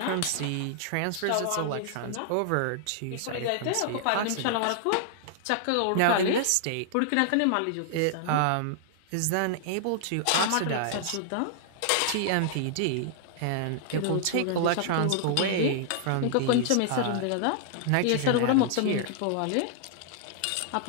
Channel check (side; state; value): both; different; correlation -0.01